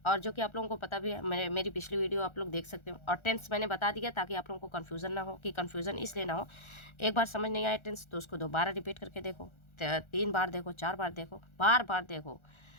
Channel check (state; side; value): late; right; 1.4 ms